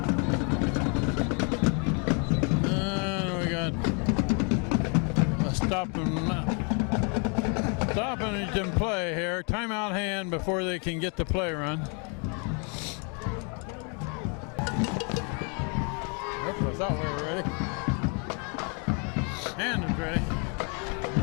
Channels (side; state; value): right; quieter; 36.4 dB